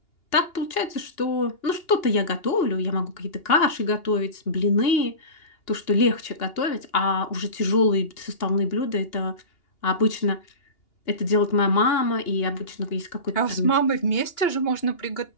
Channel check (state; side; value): late; right; 2.8 ms